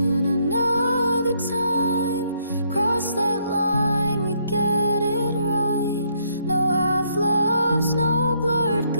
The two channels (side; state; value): both; inverted; correlation -0.71